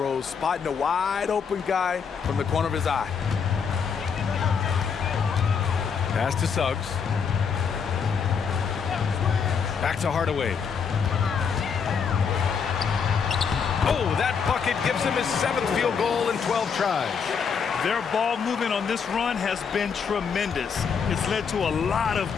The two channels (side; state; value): right; quieter; 6.3 dB